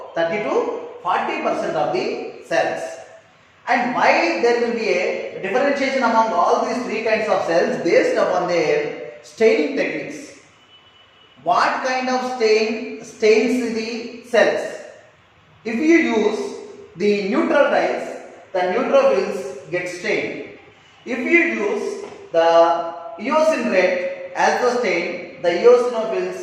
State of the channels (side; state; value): both; identical; correlation 1.00